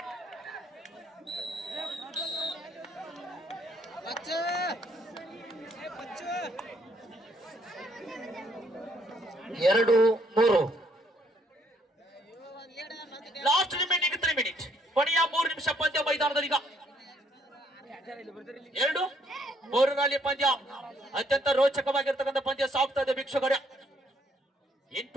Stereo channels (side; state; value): both; normal; correlation 0.68